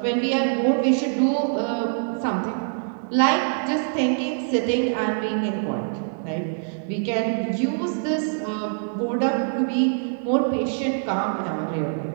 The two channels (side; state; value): left; silent; digital silence